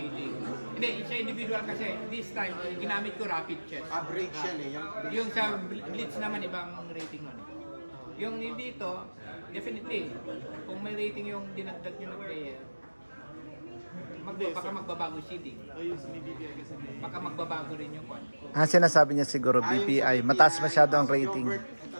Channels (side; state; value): both; inverted; correlation -1.00